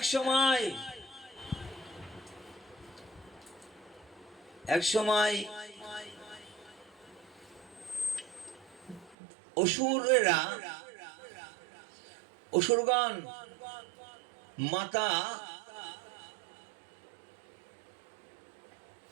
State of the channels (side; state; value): left; drops out; at 9.2 s